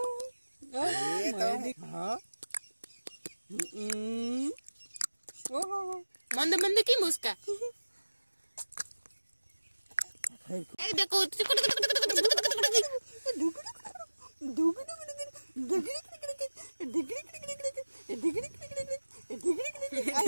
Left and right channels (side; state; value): both; inverted; correlation -1.00